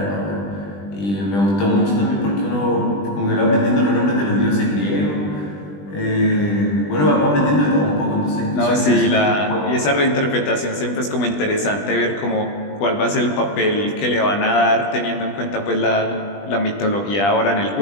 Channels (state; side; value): late; right; 20 ms